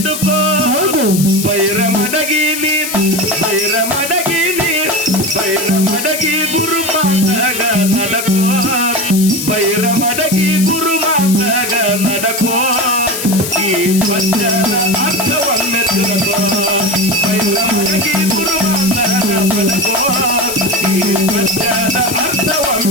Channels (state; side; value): noise; left; hiss, 5 dB below the sound